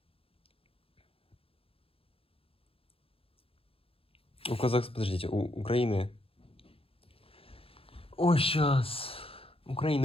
У Казахстана, подождите, у Украины... Ой, сейчас.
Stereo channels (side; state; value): right; late; 0.27 ms